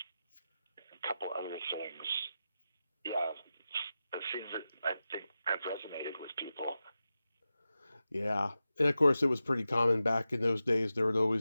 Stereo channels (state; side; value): inverted; both; correlation -0.92